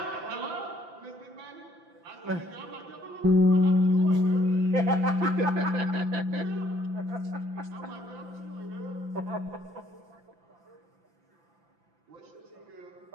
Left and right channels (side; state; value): left; late; 5.9 ms